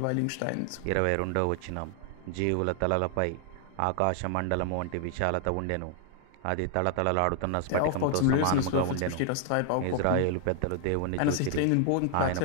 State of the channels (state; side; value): different; both; correlation 0.00